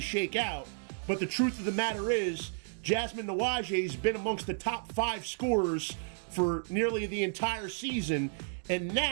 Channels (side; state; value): left; silent; digital silence